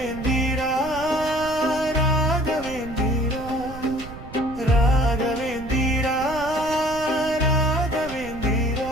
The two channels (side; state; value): right; noise; rumble, 13 dB below the sound